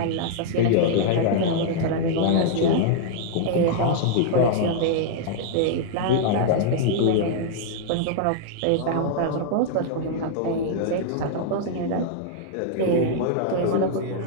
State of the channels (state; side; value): different; both; correlation -0.01